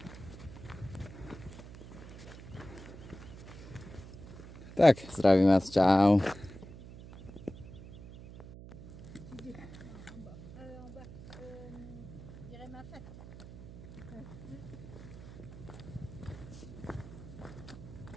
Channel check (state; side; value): noise; right; hum, 14 dB below the sound